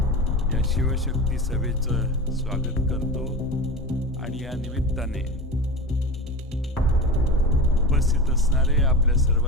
शिवशक्ती सभेचं स्वागत करतो आणि या निमित्ताने उपस्थित असणारे आपल्या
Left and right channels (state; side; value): normal; both; correlation 0.29